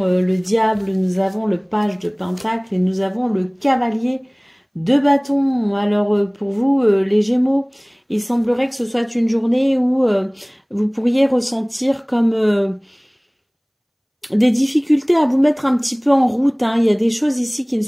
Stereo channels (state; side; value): identical; both; correlation 1.00